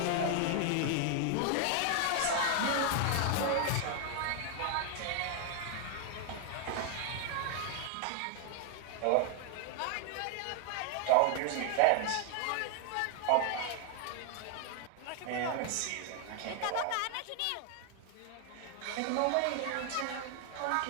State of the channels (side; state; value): both; different; correlation 0.00